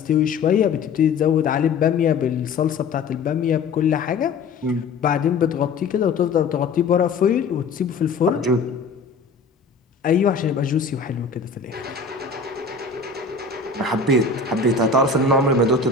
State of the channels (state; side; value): quieter; right; 4.6 dB